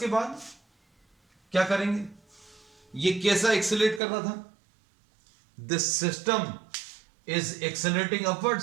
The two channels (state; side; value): drops out; left; at 4.0 s